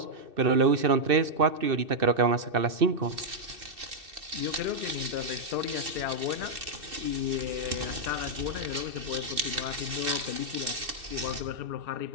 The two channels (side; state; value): left; late; 2.6 ms